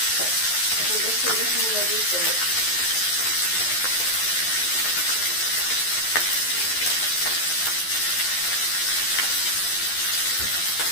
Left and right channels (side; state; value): right; late; 11 ms